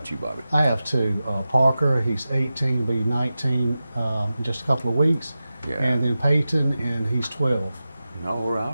you, Bobby? I have two. Parker, he's 18, be 19 in just a couple of weeks. Yeah. And then Peyton, and he's 12. All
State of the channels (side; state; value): both; inverted; correlation -0.94